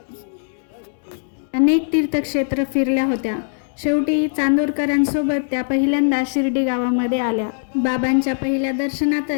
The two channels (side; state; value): right; silent; digital silence